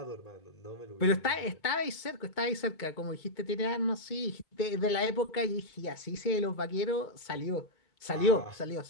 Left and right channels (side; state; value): right; late; 2.2 ms